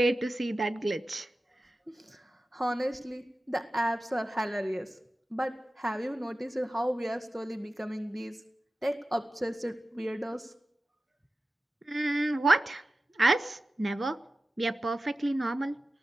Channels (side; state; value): both; normal; correlation 0.95